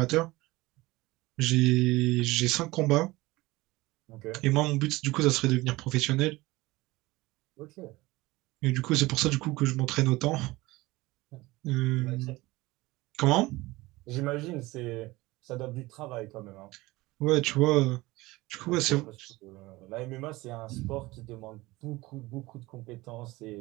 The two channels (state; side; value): quieter; left; 20.3 dB